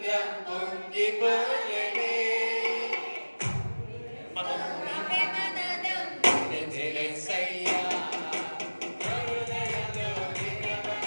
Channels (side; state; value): both; inverted; correlation -1.00